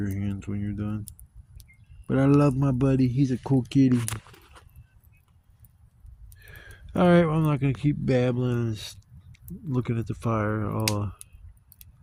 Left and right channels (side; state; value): both; identical; correlation 1.00